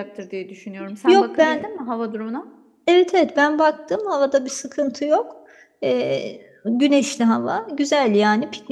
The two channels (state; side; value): identical; both; correlation 1.00